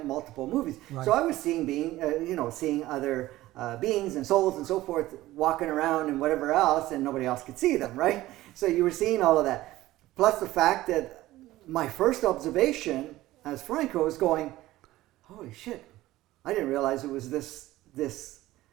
multiple movies. Right. So I was seeing seeing other beings and souls and so forth walking around and whatever else, and nobody else could see them, right? So you were seeing all of that. Plus the fact that my first observation as Franco was going, holy shit, I didn't realize it was this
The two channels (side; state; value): left; quieter; 16.5 dB